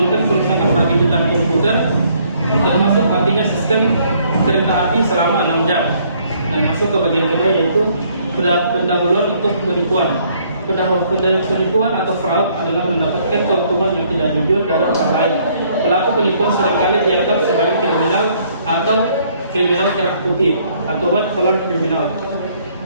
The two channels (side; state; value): both; inverted; correlation -0.65